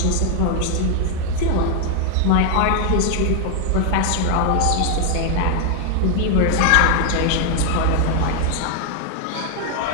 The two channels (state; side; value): different; both; correlation 0.00